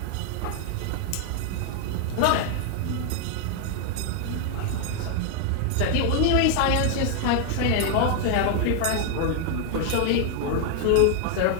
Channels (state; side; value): different; both; correlation 0.00